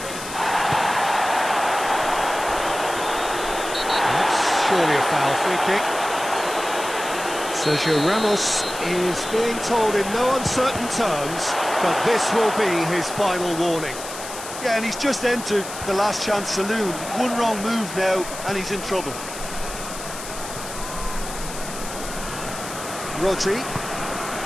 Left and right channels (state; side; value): noise; left; hiss, 10 dB below the sound